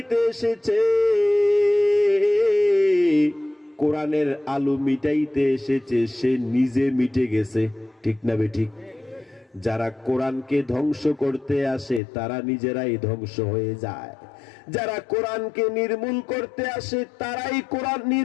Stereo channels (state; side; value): drops out; right; at 12.0 s